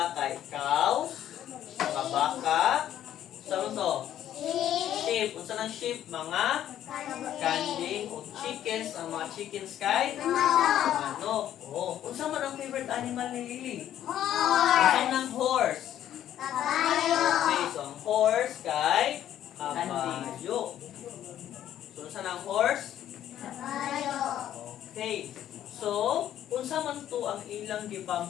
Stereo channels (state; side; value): quieter; right; 11.4 dB